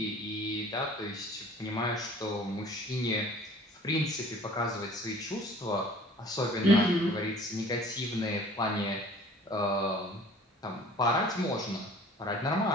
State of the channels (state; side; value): normal; both; correlation 0.49